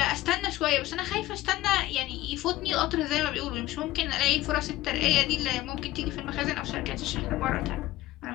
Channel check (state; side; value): quieter; right; 16.4 dB